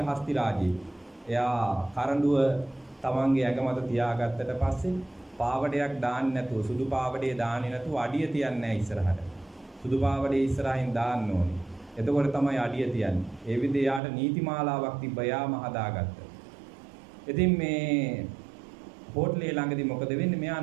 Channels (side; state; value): left; drops out; at 14.0 s